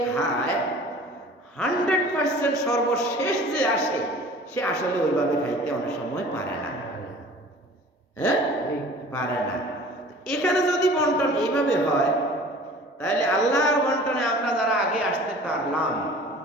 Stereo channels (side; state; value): both; normal; correlation 0.45